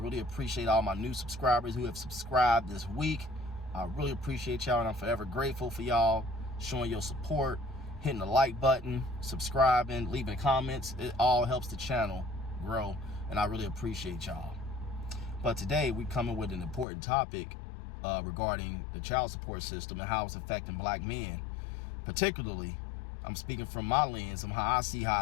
appreciate all my new subscribers who have subscribed this week. I really appreciate y'all, and I'm forever grateful for y'all showing your support, hitting the like button, subscribing, leaving comments. It all helps the channel grow, and I really appreciate y'all. But today we're coming with an important topic regarding the child support system and how it's affecting black men. Particularly, I'm speaking from my lens on how I see how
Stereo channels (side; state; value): right; drops out; at 16.9 s